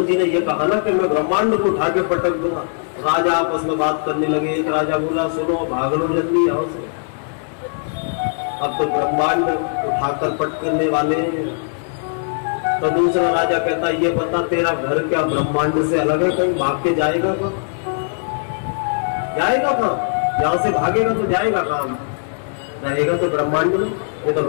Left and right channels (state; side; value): silent; right; 62 dB below the other